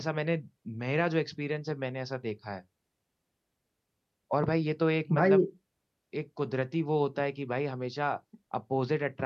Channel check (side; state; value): both; identical; correlation 1.00